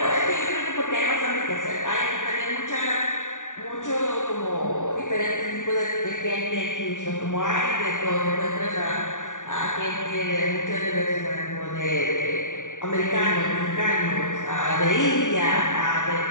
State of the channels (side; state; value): right; late; 0.86 ms